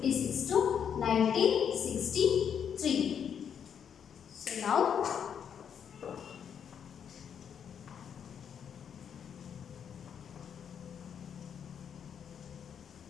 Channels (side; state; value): right; quieter; 8.0 dB